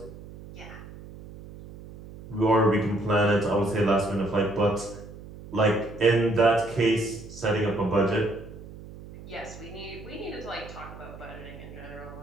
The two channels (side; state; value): right; noise; hum, 16 dB below the sound